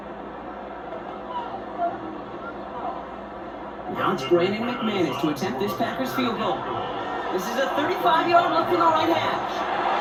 Now it's Brandon McManus to attempt this Packers field goal. This is a 35-yard look from the right hash.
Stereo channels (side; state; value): both; identical; correlation 1.00